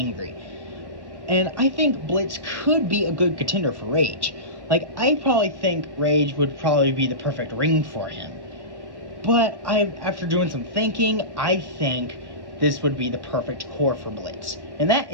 And I think Blitz could be a good contender for Rage. Like, I probably think Rage would probably be the perfect ring for him. But after doing some thinking, I think this would be the perfect corps for Blitz. And that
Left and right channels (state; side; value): late; left; 1.2 ms